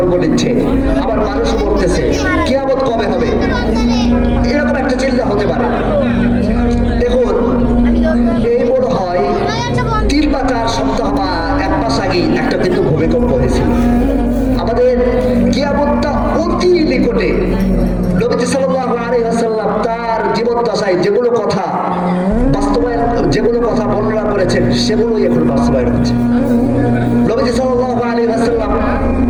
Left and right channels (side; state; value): both; identical; correlation 1.00